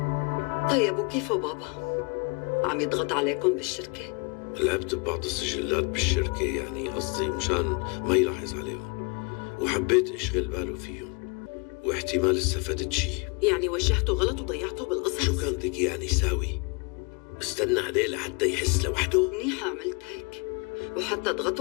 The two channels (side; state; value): right; quieter; 32.2 dB